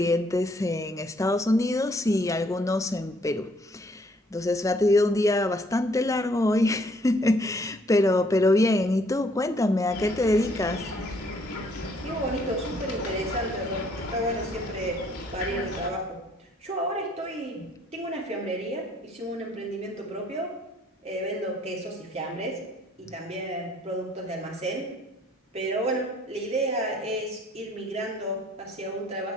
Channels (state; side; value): normal; both; correlation 0.64